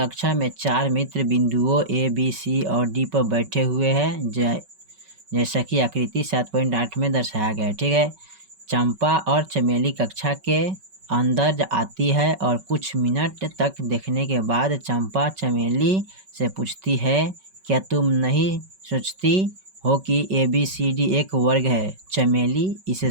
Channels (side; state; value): left; late; 5.3 ms